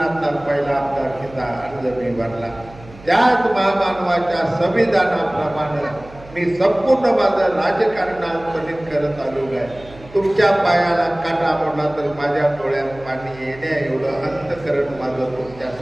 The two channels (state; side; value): noise; right; hum, 20 dB below the sound